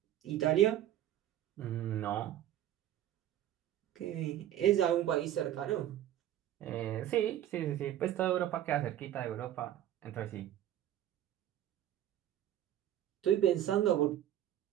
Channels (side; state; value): left; quieter; 12.1 dB